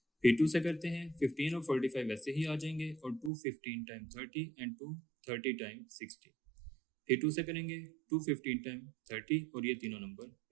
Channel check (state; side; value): drops out; left; at 3.3 s